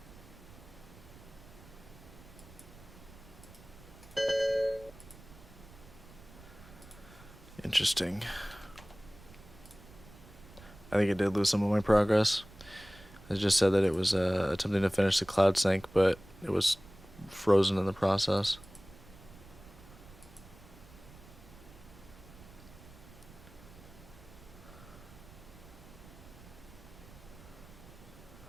Interesting. I think I did lose some of my progress. It just said that it was attempting to finish the cloud sync, but it was frozen in the process.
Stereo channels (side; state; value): right; noise; rumble, 20 dB below the sound